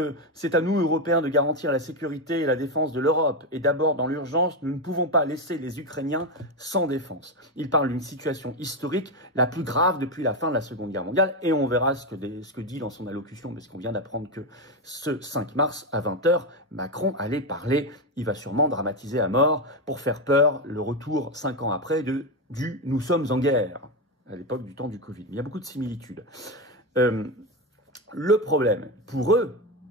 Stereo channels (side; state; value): both; normal; correlation 0.10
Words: c'est à nous, Européens, de garantir la sécurité et la défense de l'Europe. Et d'abord, dans l'urgence, nous ne pouvons pas laisser les Ukrainiens sans défense. Il parle d'une situation historique, la plus grave depuis la fin de la Seconde Guerre mondiale. Et on verra ce que dit dans son allocution, parce qu'on vient d'apprendre que ce 5 mars, à 20 h, Macron allait parler. Il va sûrement dramatiser à mort pour faire peur le retour, 5 ans après, du « nous sommes en guerre », à l'époque du temps du Covid. Il y a beaucoup de similitudes. Le problème pour eux,